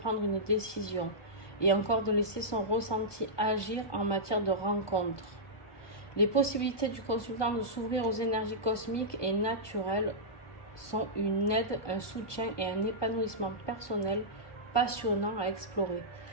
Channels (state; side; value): late; right; 1.2 ms